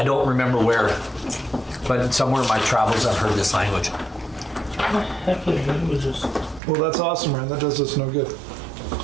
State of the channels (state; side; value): drops out; left; at 6.6 s